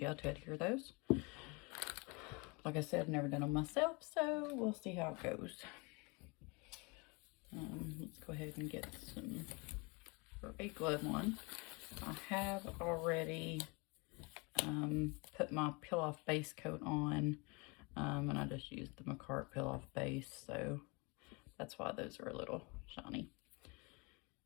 to adhere those. Like I said, I've never done them myself, so we'll see how it goes. Let's go ahead and get some for a glove one. I have already put my peel-off base coat on, and I just used the McCart peel-off base, so that's why those are a little shiny.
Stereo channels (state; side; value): quieter; right; 28.9 dB